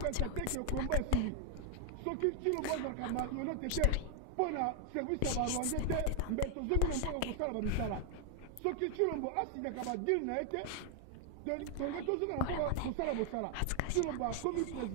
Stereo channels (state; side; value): different; both; correlation 0.00